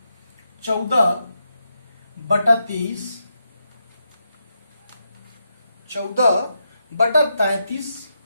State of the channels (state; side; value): inverted; both; correlation -0.83